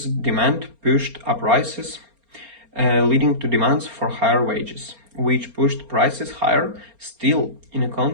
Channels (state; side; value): late; left; 4.3 ms